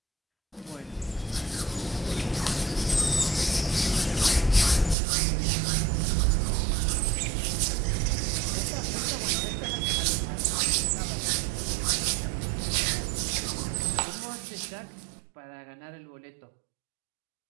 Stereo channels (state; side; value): drops out; left; at 5.0 s